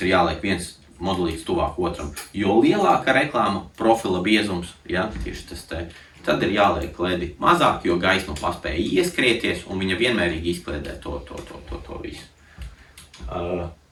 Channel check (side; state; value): both; identical; correlation 1.00